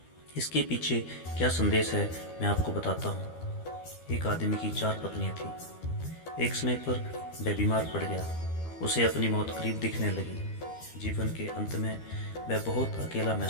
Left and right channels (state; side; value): late; right; 12 ms